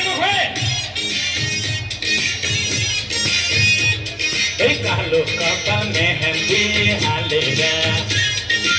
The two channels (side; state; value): both; identical; correlation 1.00